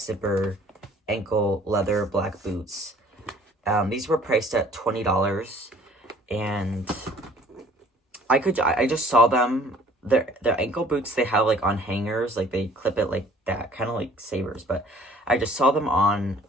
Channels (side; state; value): both; normal; correlation 0.54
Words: ankle leather black boots. These were priced at $20, and I just saw them. Their ankle boots they have like on hangers, like they clip it like that, kind of like Sabers, but I just saw them on